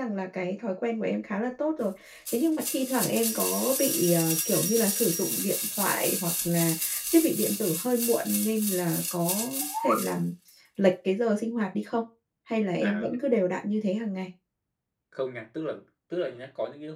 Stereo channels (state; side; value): identical; both; correlation 1.00